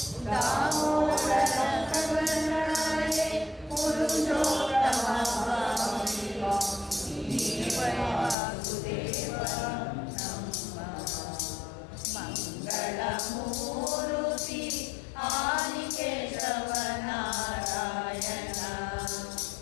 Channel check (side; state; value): right; drops out; at 8.3 s